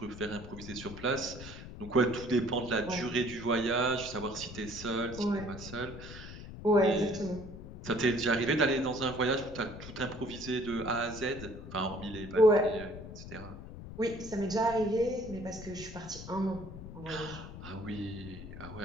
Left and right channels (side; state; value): left; noise; rumble, 12 dB below the sound